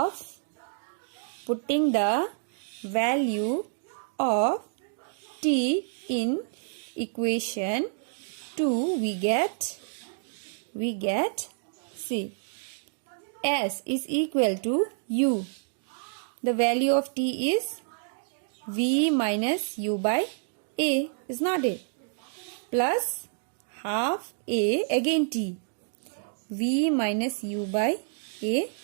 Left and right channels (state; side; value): silent; left; digital silence